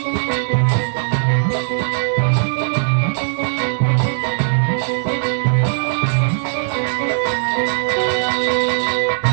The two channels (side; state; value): left; silent; 59 dB below the other